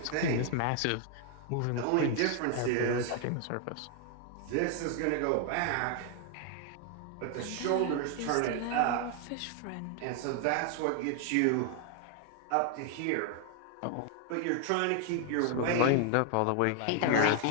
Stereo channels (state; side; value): different; both; correlation 0.00